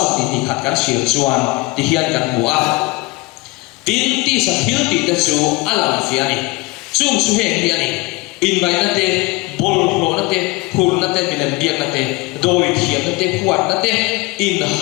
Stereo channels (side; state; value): right; quieter; 23.5 dB